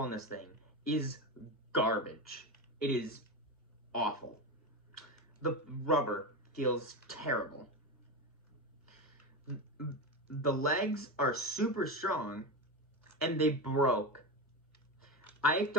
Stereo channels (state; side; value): normal; both; correlation 0.18